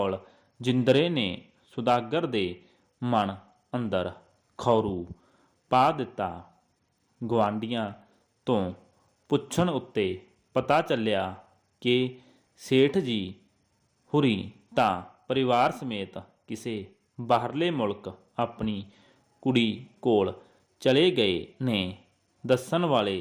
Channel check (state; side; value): identical; both; correlation 1.00